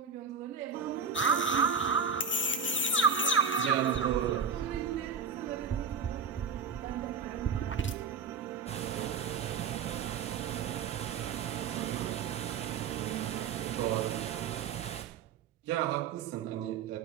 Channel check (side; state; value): left; quieter; 5.7 dB